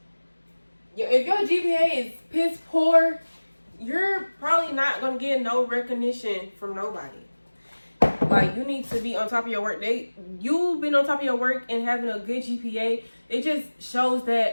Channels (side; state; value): both; inverted; correlation -1.00